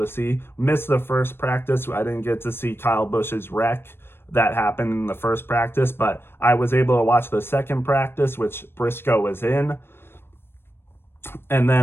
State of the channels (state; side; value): late; right; 0.11 ms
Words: see. Missed the first practice. I didn't get to see Kyle Busch's wreck that happened in the first practice, but I was able to watch the second practice, which Briscoe was in, and